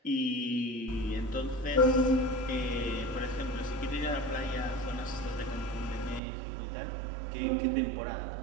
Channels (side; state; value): left; drops out; at 6.2 s